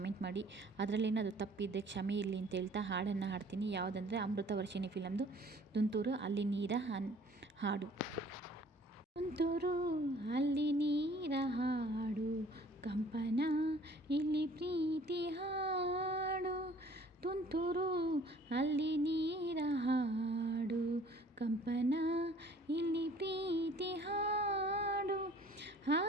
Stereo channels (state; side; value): normal; both; correlation 0.54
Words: ಮಾಡಿ. ಅದರಲ್ಲೇನಾದರೂ ತಪ್ಪಿದ್ದರೆ ಕ್ಷಮೆ ಇರಲಿ ಅಂತ ಹೇಳ್ತಾ ಹಾಡನ್ನು ಹಾಡ್ತೀನಿ. ಯಾವುದಂದರೆ ಅಮೃತವರ್ಷಿಣಿ ಫಿಲಮ್ದು ತುಂತುರು ಅಲ್ಲಿ ನೀರ ಹಾಡು. ತುಂತುರು ಅಲ್ಲಿ ನೀರ ಹಾಡು, ಕಂಪನ ಇಲ್ಲಿ ಪ್ರೀತಿ ಹಾಡು. ತುಂತುರು ಅಲ್ಲಿ ನೀರ ಹಾಡು, ಕಂಪನ ಇಲ್ಲಿ ಪ್ರೀತಿ ಹಾಡು.